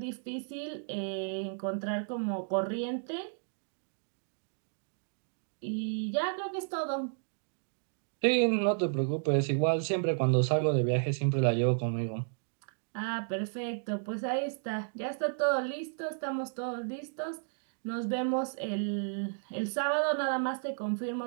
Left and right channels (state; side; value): silent; left; digital silence